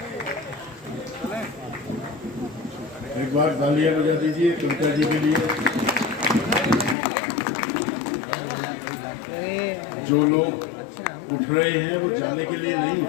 एक बार तालियां बजा दीजिए कविता जी के लिए। जो लोग उठ रहे हैं वो जाने के लिए नहीं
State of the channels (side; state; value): right; drops out; at 7.0 s